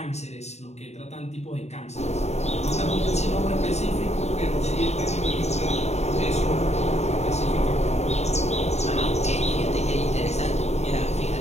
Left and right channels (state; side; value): late; right; 0.32 ms